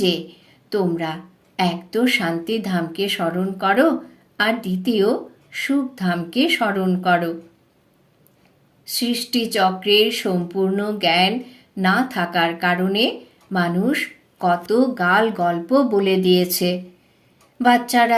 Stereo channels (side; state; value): both; identical; correlation 1.00